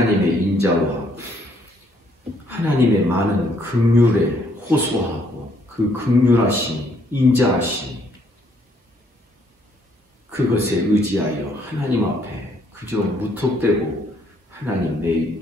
인자와 하나님의 많은 긍휼에 호소하고 그 긍휼하심, 인자하심 그것에 의지하여 하나님 앞에 그저 무턱대고 하나님 내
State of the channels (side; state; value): both; normal; correlation 0.68